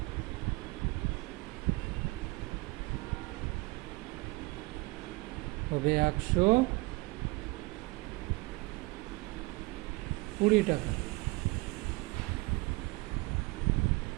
হবে 120 টাকা।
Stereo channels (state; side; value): quieter; left; 23.7 dB